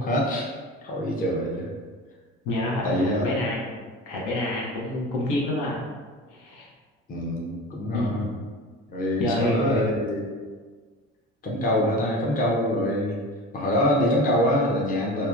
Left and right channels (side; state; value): both; normal; correlation 0.34